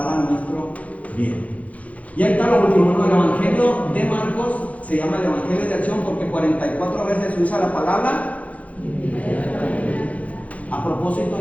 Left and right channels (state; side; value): late; right; 0.068 ms